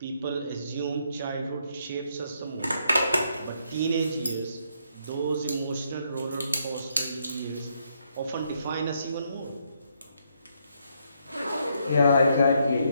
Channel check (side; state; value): both; inverted; correlation -0.75